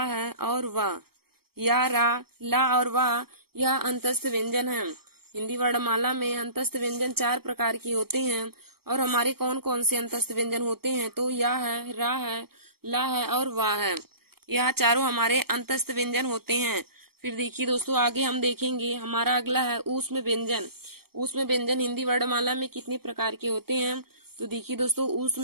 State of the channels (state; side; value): late; left; 0.95 ms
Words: है और वाह। या, रा, ला और वाह यह अंतस्थ व्यंजन है। हिंदी वर्णमाला में अंतस्थ व्यंजन 4 प्रकार के होते हैं। और हमारे कौन कौन से अंतस्थ व्यंजन होते हैं? तो या है, रा है, ला है और वाह है। यह चारों हमारे अंतस्थ व्यंजन होते हैं। फिर देखिए दोस्तों, आगे हम देखेंगे, हमारा अगला है ऊष्म व्यंजन। ऊष्म व्यंजन हिंदी वर्णमाला में कितने प्रकार के होते हैं? तो देखिए दोस्तों,